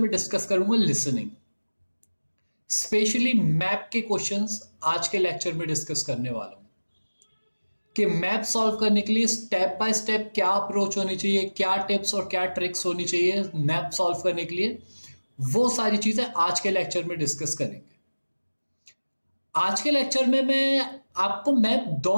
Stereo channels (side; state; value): both; inverted; correlation -1.00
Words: डिस्कस करूंगा लिसनिंग। स्पेशली मैप के क्वेश्चंस आज के लेक्चर में डिस्कस करने वाला हूं कि मैप सॉल्व करने के लिए स्टेप बाय स्टेप क्या अप्रोच होनी चाहिए, क्या टिप्स और क्या ट्रिक्स होनी चाहिए मैप सॉल्व करने के लिए। वो सारी चीजें आज के लेक्चर में डिस्कस करेंगे। आज के लेक्चर में मैं आपको मैप